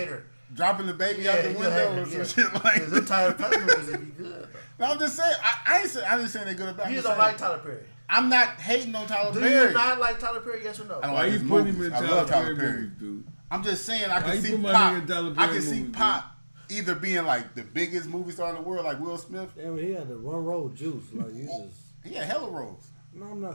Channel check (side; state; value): both; inverted; correlation -1.00